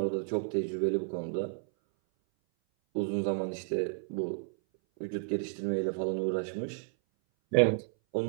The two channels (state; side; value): silent; left; 57 dB below the other